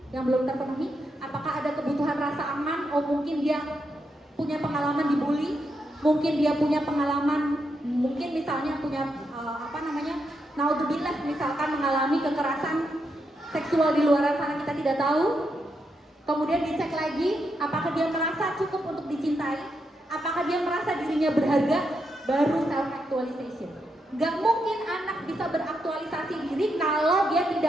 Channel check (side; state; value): both; normal; correlation 0.82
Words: yang belum terpenuhi? Apakah ada kebutuhan rasa aman? Oh, mungkin dia punya pengalaman dibully, mungkin dia punya pengalaman, mungkin misalnya punya naudzubillah, misalkan mengalami kekerasan seksual di luar sana, kita tidak tahu. Kemudian dicek lagi, apakah dia merasa cukup untuk dicintai, apakah dia merasa dirinya berharga, baru self actualization. Gak mungkin anak bisa beraktualisasi diri kalau dia